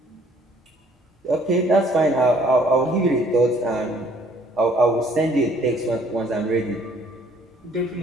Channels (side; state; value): both; normal; correlation 0.60